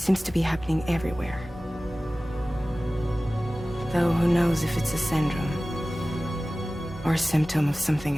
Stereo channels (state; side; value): normal; both; correlation 0.97